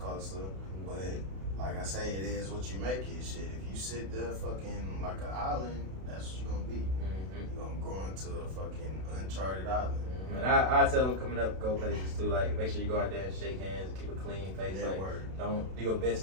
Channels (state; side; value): late; left; 32 ms